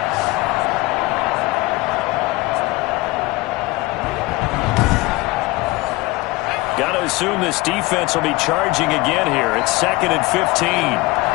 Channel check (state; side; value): quieter; right; 21.8 dB